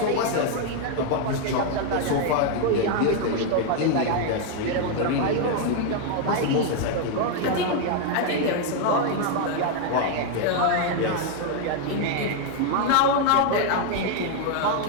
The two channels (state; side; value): different; both; correlation 0.01